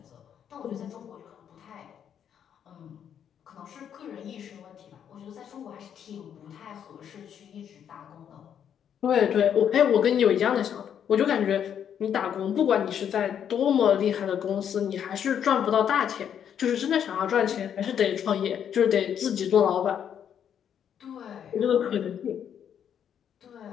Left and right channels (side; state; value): right; quieter; 8.8 dB